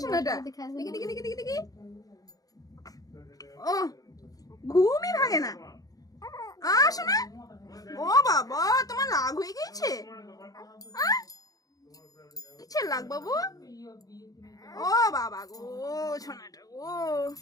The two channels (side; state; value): right; late; 0.18 ms